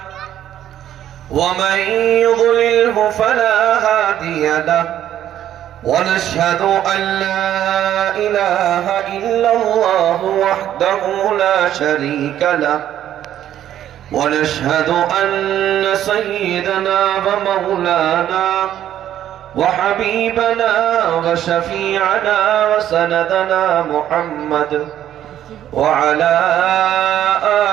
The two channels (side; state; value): left; quieter; 11.4 dB